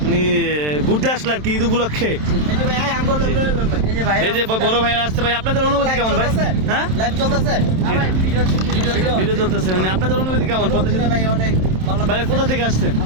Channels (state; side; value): late; left; 27 ms